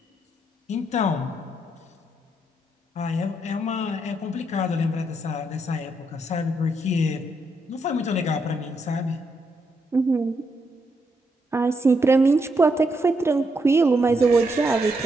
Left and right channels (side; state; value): both; normal; correlation 0.79